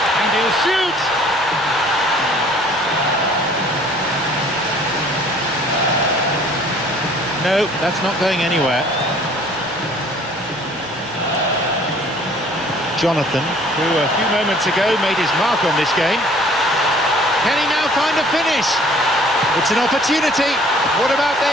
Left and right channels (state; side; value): noise; right; rumble, 25 dB below the sound